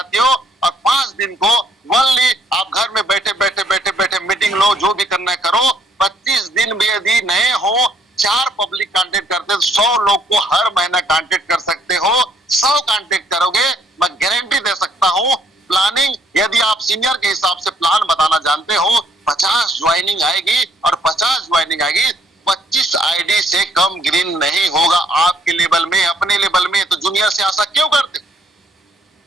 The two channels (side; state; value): both; normal; correlation 0.66